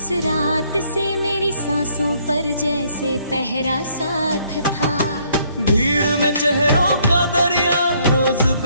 रात से मेरी सांसों पर जैसे पहरा साथ था। भीड़ में चेहरों का दरिया रोज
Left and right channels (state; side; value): inverted; both; correlation -0.67